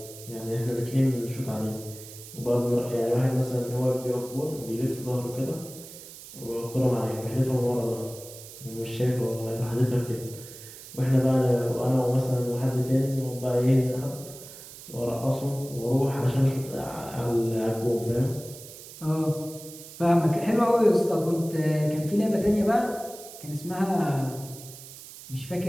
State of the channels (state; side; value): noise; right; hiss, 16 dB below the sound